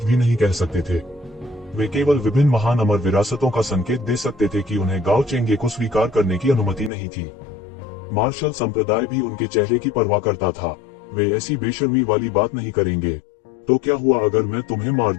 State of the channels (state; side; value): drops out; right; at 6.9 s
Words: भी नहीं कह सकते थे। वे केवल विभिन्न महान अमर विरासतों का संकेत दे सकते थे कि उन्हें गाओ चेंगे को स्वीकार करने की अनुमति नहीं थी। मार्शल संप्रदाय भी उनके चेहरे की परवाह करता था। वे ऐसी बेशर्मी वाली बात नहीं करेंगे। तो क्या हुआ अगर मैं तुम्हें मार